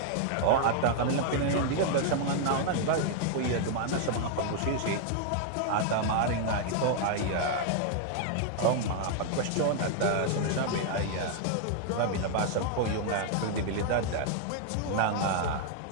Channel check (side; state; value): both; different; correlation 0.00